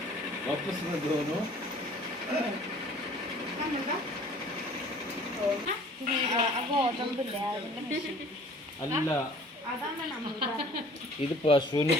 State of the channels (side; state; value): both; normal; correlation 0.51